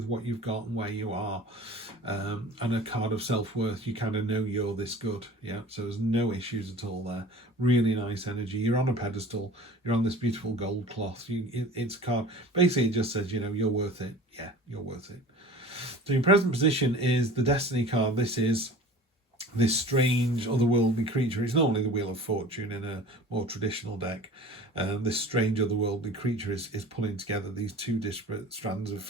what you've got and where you are. And a card of self-worth. You kind of know you're this good. Yeah, so there's no issues at all there. Really nice energy. You're on a pedestal. You're on this beautiful gold cloth. It's a card. Basically, it just says, you know, you're worth it. Yeah, you're worth it. So your present position is the Destiny card. This is this strange otherworldly creature. It's normally the Wheel of Fortune in a more traditional deck. This strange otherworldly creature is pulling together these two disparate strands of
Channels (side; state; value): both; normal; correlation 0.41